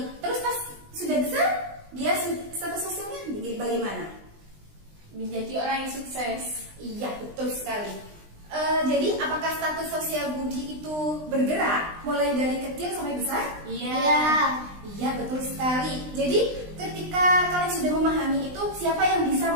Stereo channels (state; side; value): late; left; 20 ms